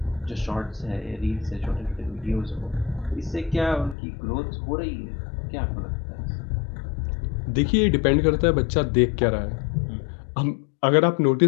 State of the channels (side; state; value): right; drops out; at 4.0 s